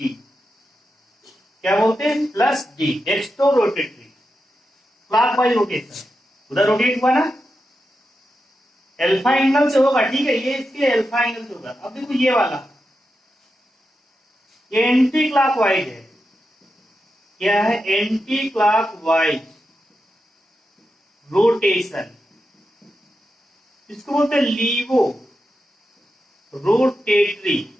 क्या बोलते हैं? Plus D, dextro rotatory, clockwise rotation. उधर रोटेट हुआ ना, अल्फा एंगल से होगा, ठीक है, ये इसके अल्फा एंगल से होगा। अब देखो ये वाला, ये एंटी क्लॉकवाइज है। क्या है? एंटी क्लॉकवाइज रोटेशन, इसको बोलते हैं लीवो रोटेटरी,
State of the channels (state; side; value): normal; both; correlation 0.88